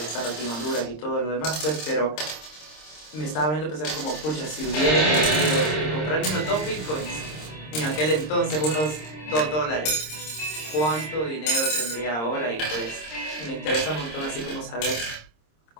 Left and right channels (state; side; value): late; right; 26 ms